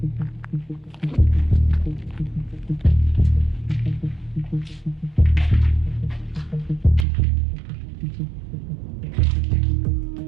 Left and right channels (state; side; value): drops out; left; at 7.1 s